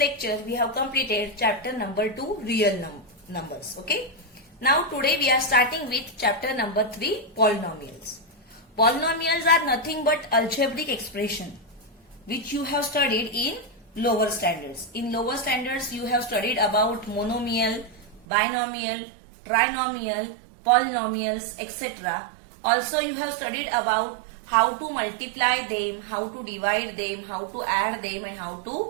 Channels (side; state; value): left; drops out; at 18.2 s